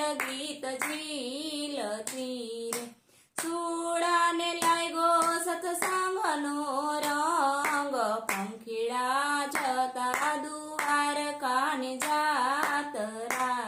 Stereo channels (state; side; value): identical; both; correlation 1.00